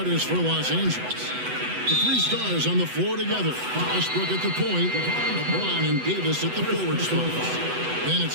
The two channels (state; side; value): late; left; 8.0 ms